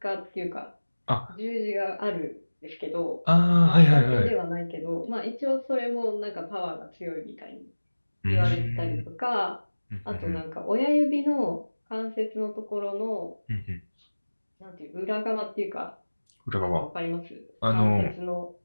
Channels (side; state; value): both; inverted; correlation -1.00